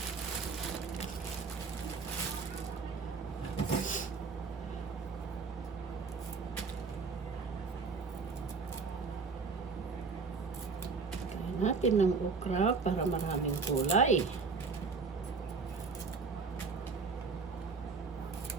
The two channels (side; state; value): left; quieter; 4.7 dB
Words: Kain natin ng okra para maraming kulay.